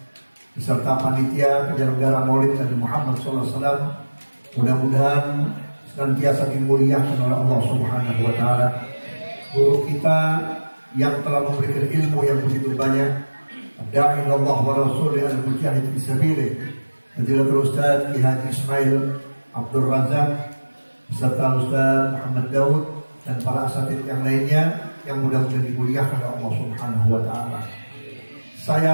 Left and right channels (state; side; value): inverted; both; correlation -1.00